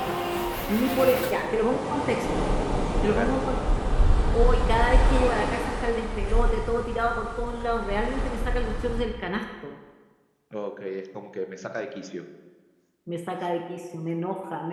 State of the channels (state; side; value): identical; both; correlation 1.00